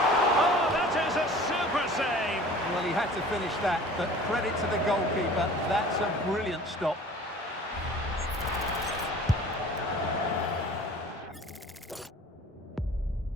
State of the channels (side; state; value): both; normal; correlation 0.45